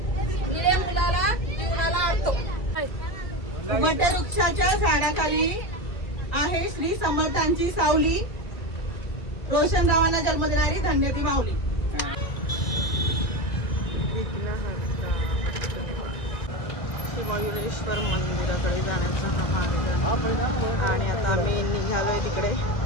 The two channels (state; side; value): late; right; 1.9 ms